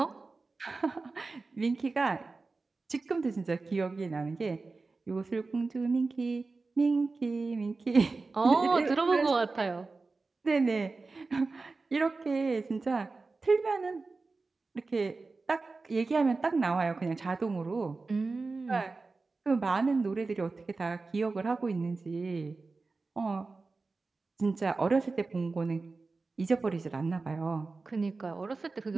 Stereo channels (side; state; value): left; quieter; 3.8 dB